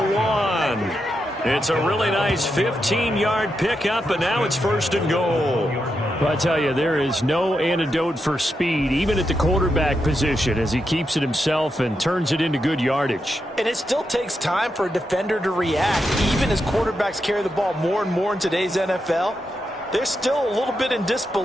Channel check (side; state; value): both; normal; correlation 0.85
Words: 1. It's a really nice 15-yard pickup, and now it's 1st and goal. Well, I tell you, there is no antidote for speed, even at the quarterback position, as he keeps it himself and turns it into good yardage. And it still takes time for a defender to react. Even as quarterbacks carry the ball more and more in today's NFL, they're still a little bit in